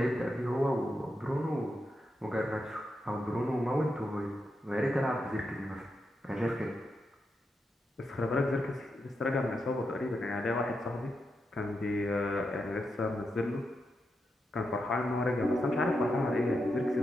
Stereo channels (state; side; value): normal; both; correlation 0.85